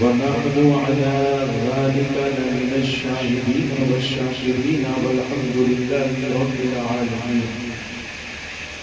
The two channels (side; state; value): both; identical; correlation 1.00